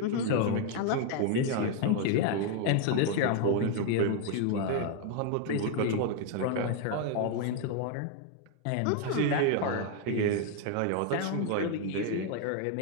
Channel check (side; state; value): both; different; correlation 0.01